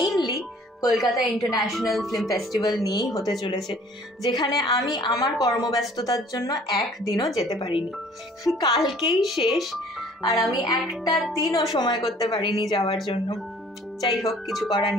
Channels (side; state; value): both; normal; correlation 0.54